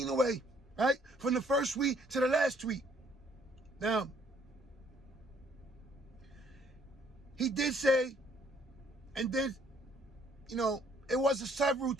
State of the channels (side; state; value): both; normal; correlation 0.63